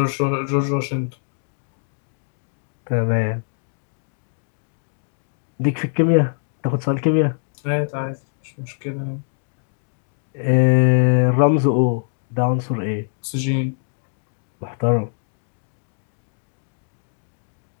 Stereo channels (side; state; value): right; silent; digital silence